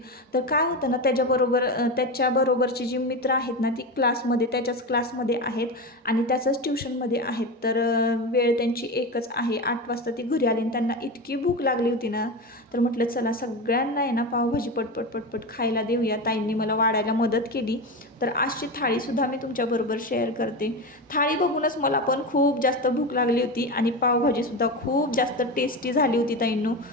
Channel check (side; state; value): both; normal; correlation 0.20